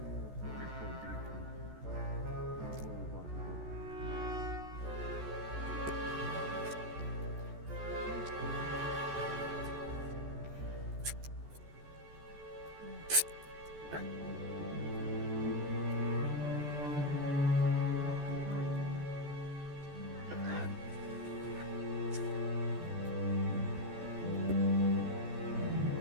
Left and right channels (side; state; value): left; late; 14 ms